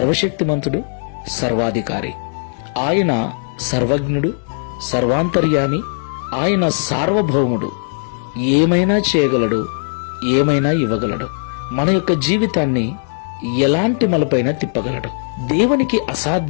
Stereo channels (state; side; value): silent; right; 66 dB below the other